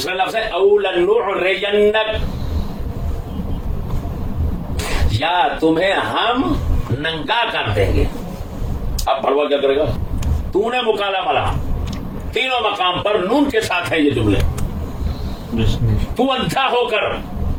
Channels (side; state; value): both; identical; correlation 1.00